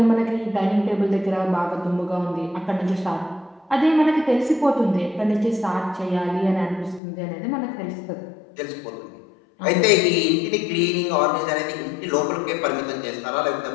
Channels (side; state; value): right; drops out; at 7.0 s